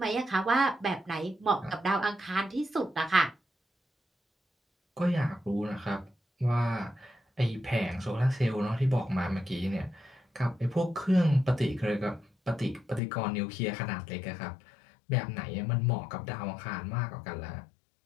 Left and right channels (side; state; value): right; drops out; at 13.0 s